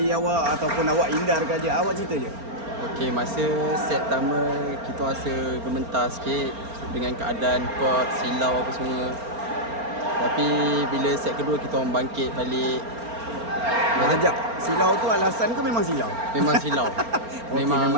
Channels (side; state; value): left; late; 4.3 ms